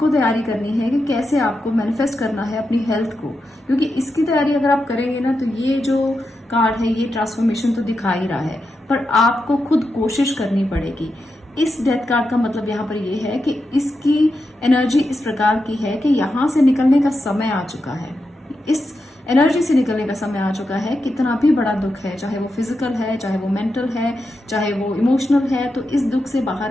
तैयारी करनी है कि कैसे आपको मैनिफेस्ट करना है अपनी हेल्थ को, क्योंकि इसकी तैयारी अगर आप करेंगे ना, तो ये जो कार्ड है ये ट्रांसफॉर्मेशन तो दिखा ही रहा है, पर आपको खुद कोशिश करनी पड़ेगी। इस डेथ कार्ड का मतलब यहाँ पर ये है कि इसकी एनर्जी इस प्रकार की है कि यहाँ से निकलने का समय आ चुका है, इस एनर्जी से निकलने का समय आ चुका है। कितना भी बड़ा दुख है, चाहे वो फिजिकल है, चाहे वो मेंटल है, चाहे वो इमोशनल है, तो इस दुख से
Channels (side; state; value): both; normal; correlation 0.87